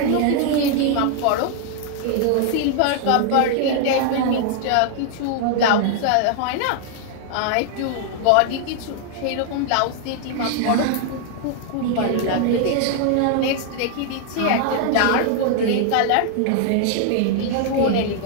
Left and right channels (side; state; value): both; different; correlation 0.00